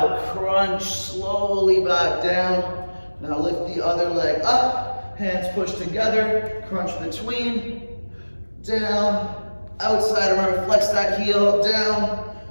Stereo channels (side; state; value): both; inverted; correlation -1.00